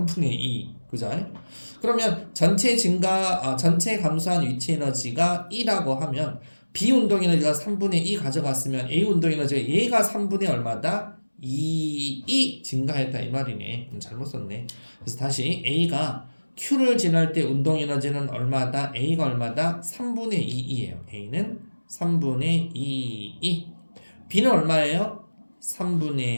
2. 그죠? 그러면 전체 감소한 위치 에너지가 2라고 하면 B 운동 에너지가 3분의 2 가져갔으면 A 운동 에너지가 얘가 3분의 얼마다? 2 증가했다 이 말이네. 잘못 썼네. 그래서 다시 A가 Q를 지날 때 운동 에너지는 얼마다? A가 얼마다? 3분의 2이에요. A는 3분의 2. B는 얼마예요?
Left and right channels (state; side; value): inverted; both; correlation -1.00